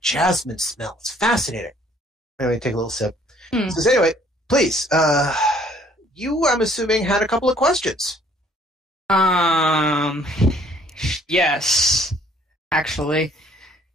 jasmine smell. It's fascinating." Anyway, take a little sip. He says, "Anyway, please, you, I'm assuming, had a couple of questions." Yes, actually.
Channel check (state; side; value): normal; both; correlation 0.60